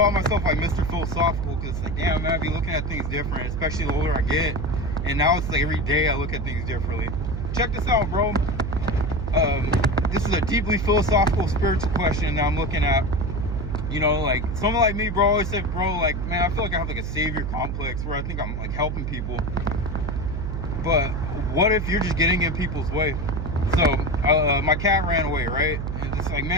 myself like Mr. Philosophical because it's like, damn, man, I be looking at things different, especially the older I get. And now it's like every day I look at things differently. Check this out, bro. This is a deeply philosophical, spiritual question that I'm looking at. Like someone like me, bro, always said, bro, like, man, I feel like I have like a savior complex where I think I'm like helping people. But what if you're just getting in people's way? So my cat ran away, right? And it's like,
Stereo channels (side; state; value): right; noise; hum, 4 dB below the sound